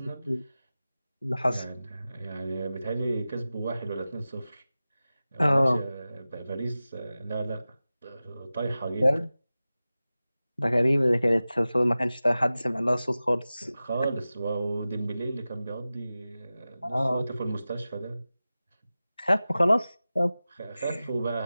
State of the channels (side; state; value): both; inverted; correlation -0.96